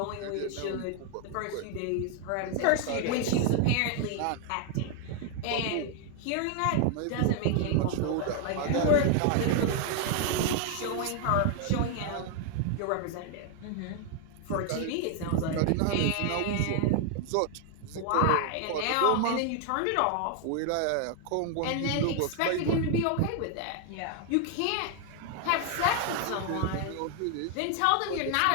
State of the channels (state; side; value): different; both; correlation 0.00